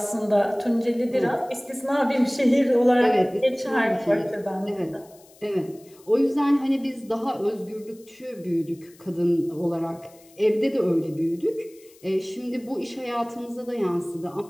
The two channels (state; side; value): noise; left; hiss, 27 dB below the sound